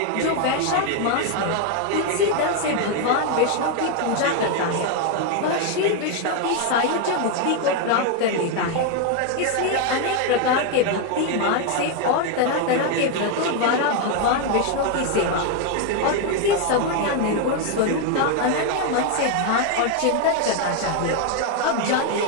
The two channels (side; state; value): both; different; correlation 0.01